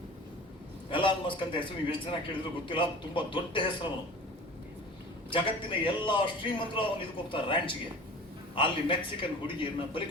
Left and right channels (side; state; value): both; normal; correlation 0.40